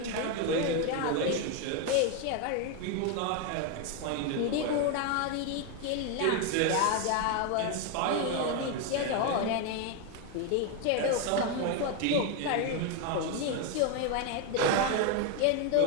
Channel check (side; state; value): both; different; correlation 0.01